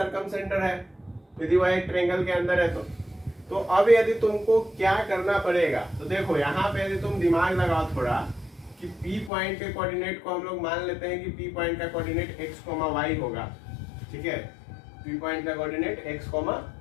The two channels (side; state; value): right; drops out; at 9.3 s